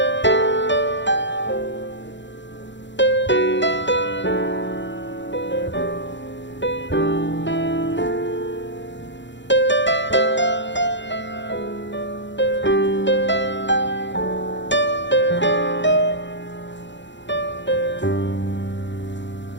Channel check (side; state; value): right; late; 0.53 ms